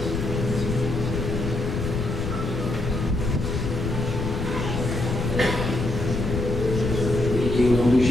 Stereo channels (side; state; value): left; noise; rumble, 3 dB below the sound